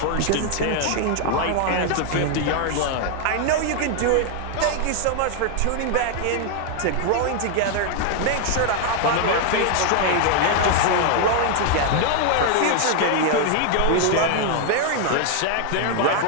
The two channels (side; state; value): both; different; correlation 0.00